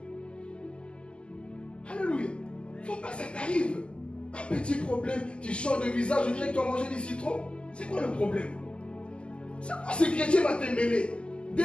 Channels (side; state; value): right; late; 0.052 ms